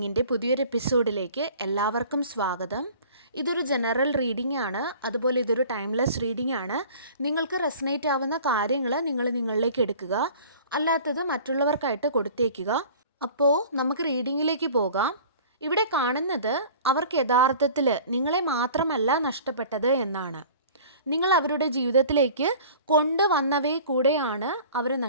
പുതിയൊരു എപ്പിസോഡിലേക്ക് എല്ലാവർക്കും സ്വാഗതം. ഇതൊരു ജനറൽ റീഡിംഗ് ആണ്, അതുപോലെ ഇതൊരു ടൈംലെസ് റീഡിംഗ് ആണ്. നിങ്ങൾക്ക് റെസനേറ്റ് ആവുന്ന കാര്യങ്ങൾ നിങ്ങളിലേക്ക് എടുക്കുക, അല്ലാത്തത് മറ്റുള്ളവർക്കായിട്ട് കൊടുത്തേക്കുക. അപ്പോൾ നമുക്ക് റീഡിങ്ങിലേക്ക് പോകാം. ഇവിടെ കാണുന്നത് അവർക്ക് യഥാർത്ഥത്തിൽ നിങ്ങളെ മാത്രമല്ല നഷ്ടപ്പെട്ടത് എന്നാണ്. നിങ്ങൾ അവരുടെ ജീവിതത്തിലേക്ക് കൊണ്ടുവന്നവയെ കൂടെയാണ് അവർ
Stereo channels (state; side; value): inverted; both; correlation -0.45